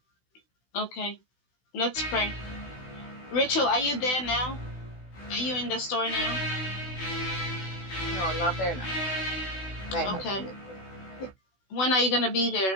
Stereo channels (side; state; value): right; late; 16 ms